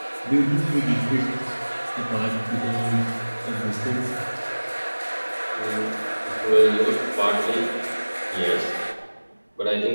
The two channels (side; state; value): both; inverted; correlation -1.00